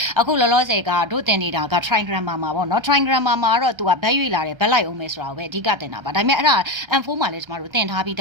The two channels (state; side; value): late; left; 1.3 ms